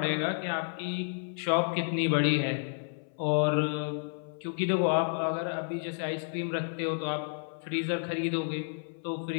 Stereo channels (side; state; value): right; silent; 57 dB below the other